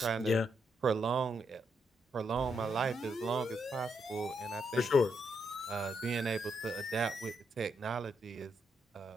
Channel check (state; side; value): normal; both; correlation 0.79